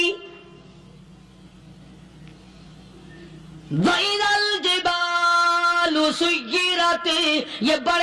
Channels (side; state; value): both; identical; correlation 1.00